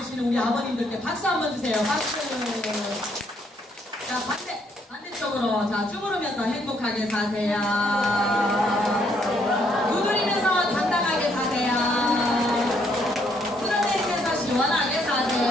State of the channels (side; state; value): both; normal; correlation 0.70